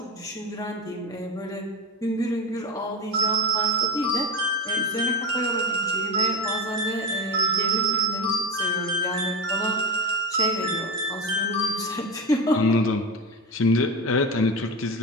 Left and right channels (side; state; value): both; normal; correlation 0.19